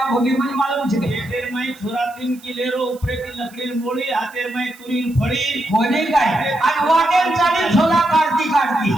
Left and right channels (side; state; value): right; noise; hiss, 24 dB below the sound